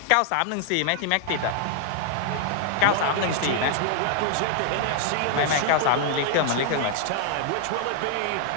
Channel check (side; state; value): both; different; correlation 0.00